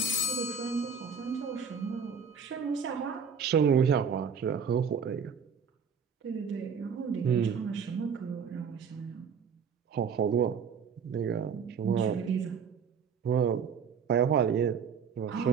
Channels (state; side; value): quieter; left; 6.3 dB